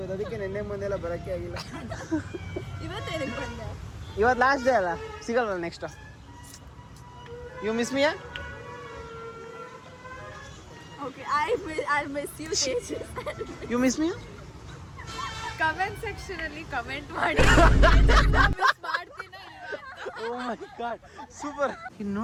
ಅದಕ್ಕೆ ನೆನ್ನೆ ಮೊನ್ನೆಲ್ಲ ಬರೋಕ್ಕೆ ಆಗಿಲ್ಲ. ಇವತ್ತು ಲಾಸ್ಟ್ ಡೇ ಅಲ್ಲ, ಸಿಗಲ್ವಲ್ಲ next. You miss me? You miss me? Comment section ಅಲ್ಲಿ ಕಮೆಂಟ್ ಮಾಡಿ. Oh my god, super. ಇನ್ನು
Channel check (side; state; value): both; identical; correlation 1.00